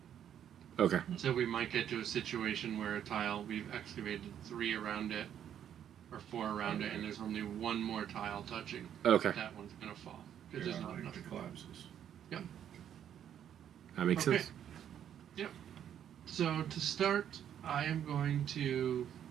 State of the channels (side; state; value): left; quieter; 9.7 dB